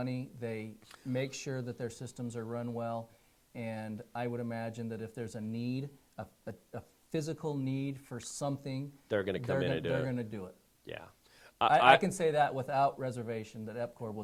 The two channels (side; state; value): both; identical; correlation 1.00